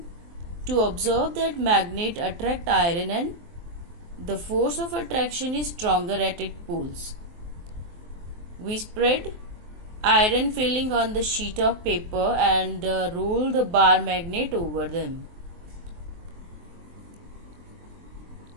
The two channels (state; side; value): late; left; 23 ms